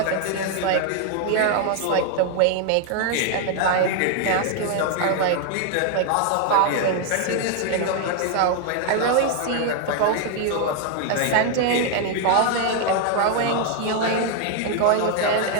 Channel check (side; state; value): both; different; correlation 0.00